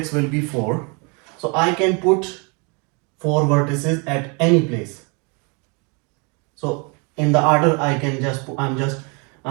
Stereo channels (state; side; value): quieter; left; 32.9 dB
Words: will be 4. So I can put 4 vertices at any place. So in the order I can